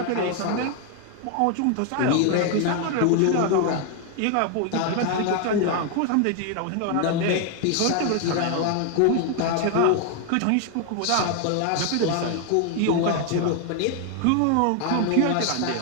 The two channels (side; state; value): both; different; correlation 0.01